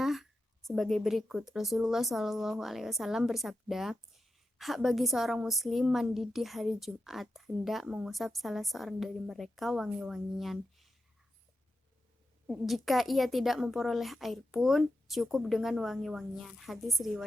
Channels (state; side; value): normal; both; correlation 0.89